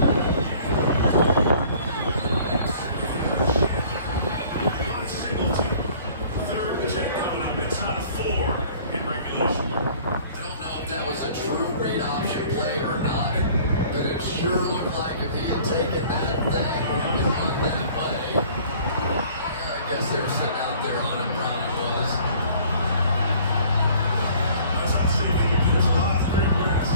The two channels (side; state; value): both; inverted; correlation -0.52